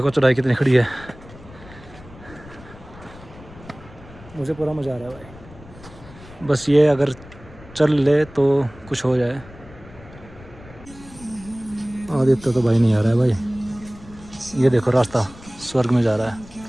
चढ़ाई कितनी खड़ी है। मुझे पूरा मज़ा आ रहा है भाई। बस ये अगर चल ले तो कुछ हो जाए। आदित्य तो भाई नहीं आ रहा है भाई। ये देखो रास्ता स्वर्ग में जा रहा है।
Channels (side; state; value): left; noise; rumble, 20 dB below the sound